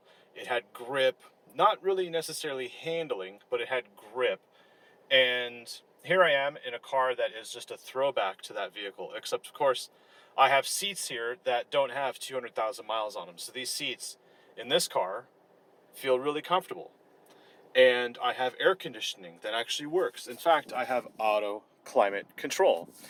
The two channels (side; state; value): both; identical; correlation 1.00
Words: it had grip, not really necessarily handling, but it had grip. And here I am in a car that is just a throwback to that vehicle, except of course I have seats here that don't have 200,000 miles on them. So these seats in this car feel really comfortable. And I have air conditioning that actually works. In fact, I have auto climate control.